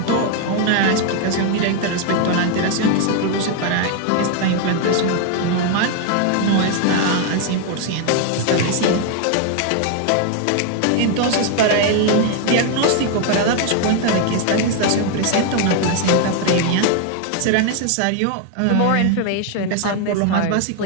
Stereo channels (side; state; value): both; different; correlation 0.01